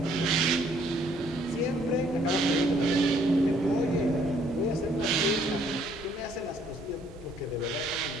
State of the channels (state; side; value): normal; both; correlation 0.64